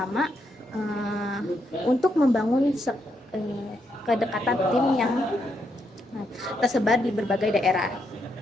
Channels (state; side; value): normal; both; correlation 0.79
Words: untuk membangun kedekatan tim yang tersebar di berbagai daerah.